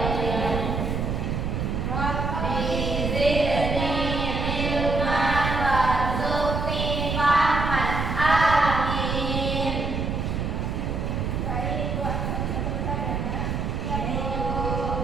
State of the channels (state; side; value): noise; right; rumble, 1 dB below the sound